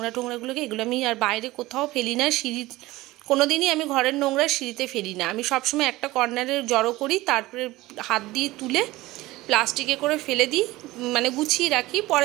টোংরাগুলোকে। এগুলো আমি আর বাইরে কোথাও ফেলি না, সিঁড়ি কোনো দিনই আমি ঘরের নোংরা সিঁড়িতে ফেলি না। আমি সবসময় একটা কর্নারে জড়ো করি, তারপরে হাত দিয়ে তুলে প্লাস্টিকে করে ফেলে দিই, মানে গুছিয়ে রাখি।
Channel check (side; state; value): left; quieter; 18.7 dB